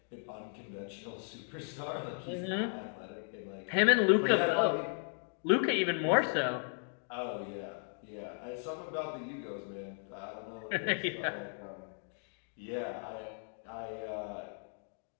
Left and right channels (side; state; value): right; silent; 54 dB below the other